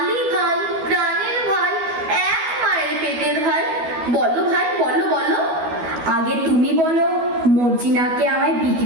ভাই, প্রাণের ভাই, এক মায়ের পেটের ভাই। বলো ভাই, বলো বলো। আগে তুমি বলো, মর্জিনাকে আমায়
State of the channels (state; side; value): late; left; 12 ms